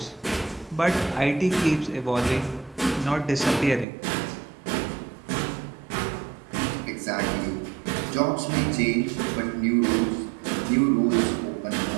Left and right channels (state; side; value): drops out; left; at 3.9 s